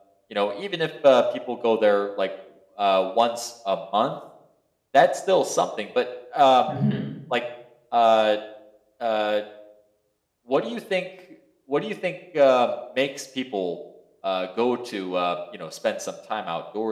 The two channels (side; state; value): both; identical; correlation 1.00